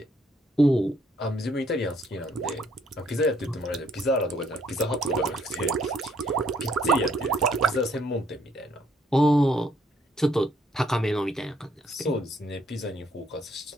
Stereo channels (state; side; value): normal; both; correlation 0.67